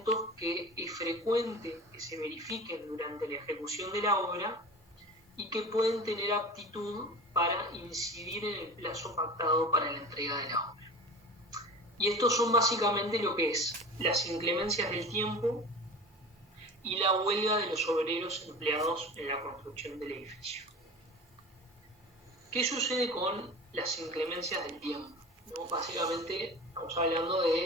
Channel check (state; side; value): normal; both; correlation 0.35